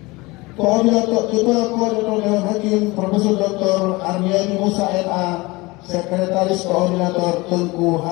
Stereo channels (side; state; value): right; quieter; 23.1 dB